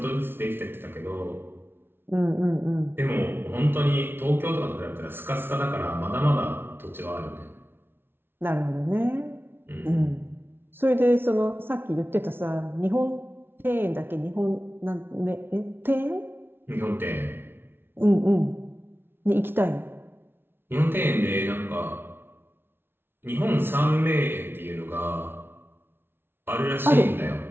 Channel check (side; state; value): left; late; 0.11 ms